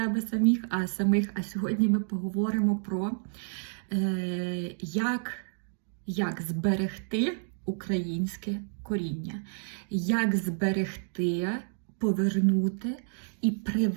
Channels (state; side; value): silent; left; digital silence